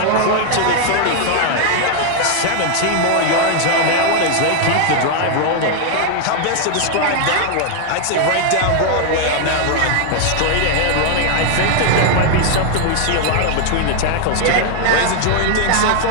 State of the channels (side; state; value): both; different; correlation 0.00